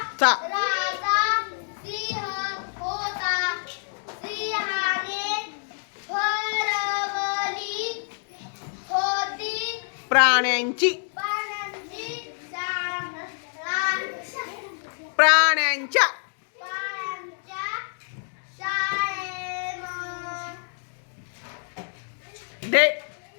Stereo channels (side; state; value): right; silent; 60 dB below the other